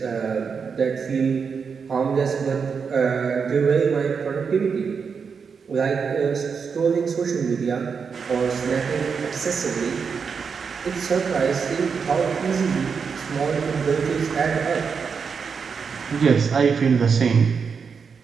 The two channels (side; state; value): left; quieter; 5.9 dB